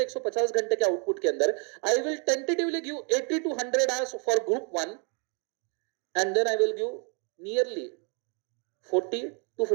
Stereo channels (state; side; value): quieter; left; 37.0 dB